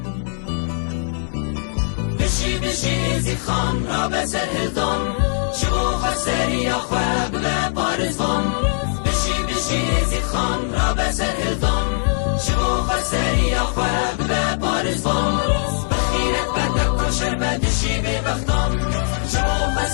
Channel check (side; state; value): right; silent; 64 dB below the other